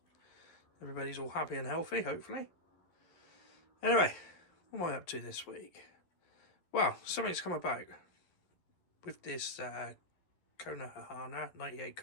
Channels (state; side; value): late; right; 11 ms